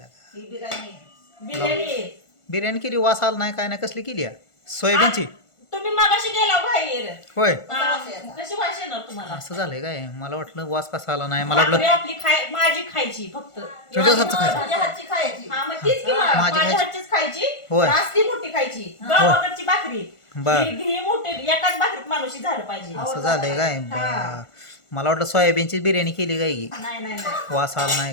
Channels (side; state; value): right; late; 1.5 ms